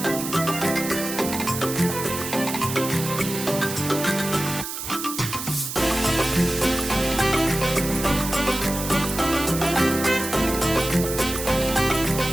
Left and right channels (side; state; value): right; noise; hiss, 7 dB below the sound